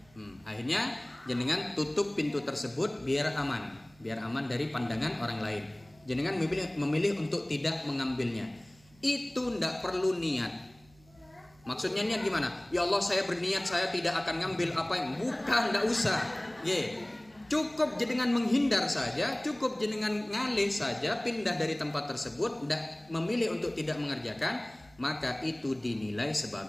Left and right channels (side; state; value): right; noise; hum, 28 dB below the sound